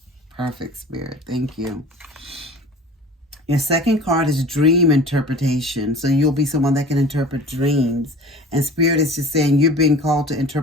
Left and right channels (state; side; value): normal; both; correlation 0.41